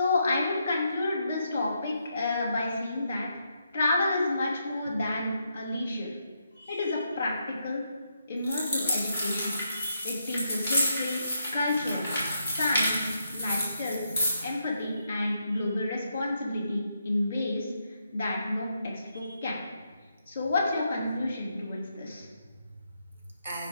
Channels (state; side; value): inverted; both; correlation -0.80